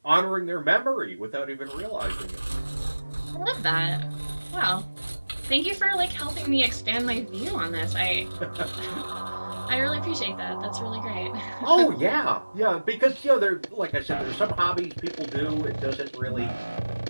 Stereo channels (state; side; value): inverted; both; correlation -1.00